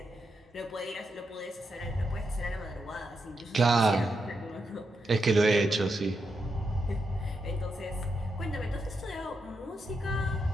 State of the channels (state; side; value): normal; both; correlation 0.84